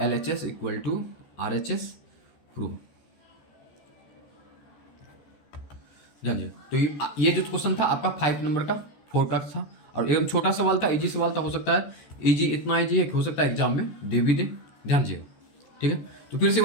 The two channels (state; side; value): late; right; 14 ms